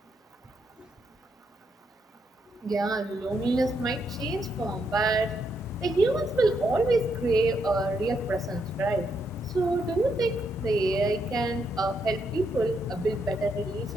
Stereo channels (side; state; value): both; normal; correlation 0.78